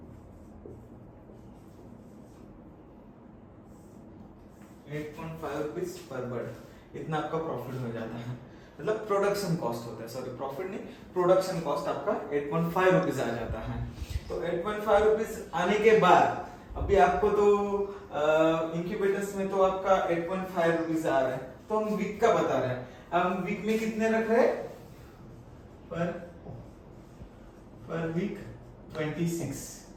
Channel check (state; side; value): identical; both; correlation 1.00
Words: 8.5 रुपीज पर बर्ड, इतना आपका प्रॉफिट हो जाता है। मतलब प्रोडक्शन कॉस्ट होता है, सॉरी प्रॉफिट नहीं, प्रोडक्शन कॉस्ट आपका 8.5 रुपीज आ जाता है। तो 8.5 रुपीज आने के बाद अभी आपको तो इंक्यूबेटर्स में तो आपका 8.5 रुपीज आ रहा है, तो हम वीक का बता रहे हैं। हम वीक में कितने रख रहे हैं, पर वीक 26।